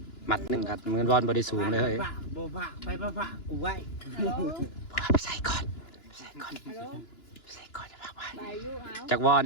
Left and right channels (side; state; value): right; late; 2.9 ms